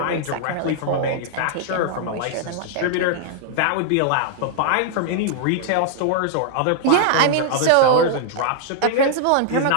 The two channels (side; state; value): both; different; correlation 0.00